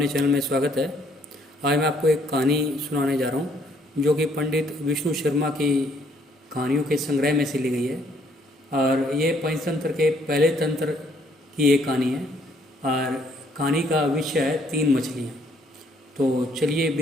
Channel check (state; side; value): normal; both; correlation 0.67